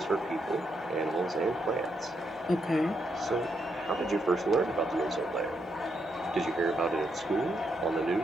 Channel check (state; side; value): normal; both; correlation 0.79